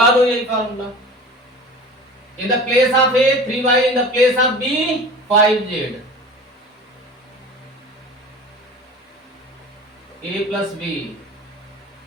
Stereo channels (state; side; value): normal; both; correlation 0.38